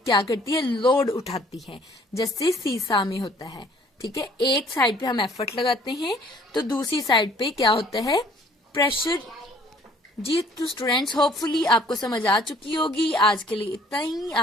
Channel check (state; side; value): normal; both; correlation 0.57